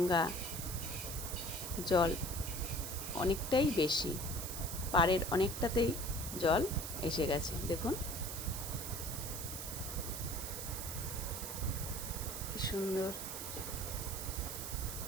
জল অনেকটাই বেশি, পাড়ের অনেকটাতেই জল এসে গেছে। দেখুন কি সুন্দর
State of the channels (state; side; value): noise; right; hiss, 6 dB below the sound